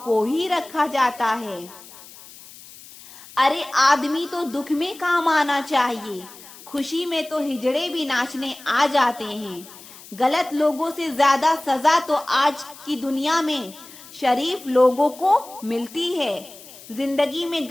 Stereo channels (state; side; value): noise; left; hiss, 19 dB below the sound